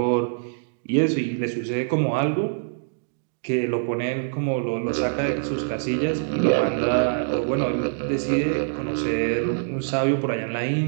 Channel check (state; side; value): silent; left; digital silence